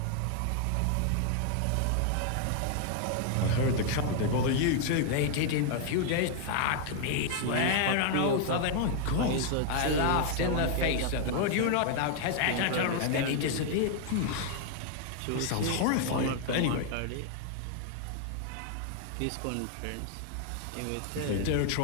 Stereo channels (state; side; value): different; both; correlation 0.00